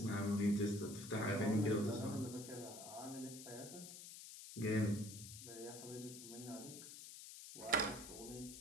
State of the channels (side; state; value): left; noise; hiss, 12 dB below the sound